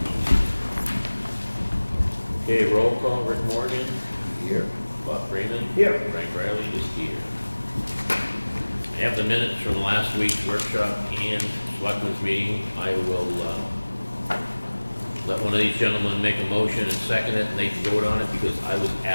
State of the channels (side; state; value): both; inverted; correlation -1.00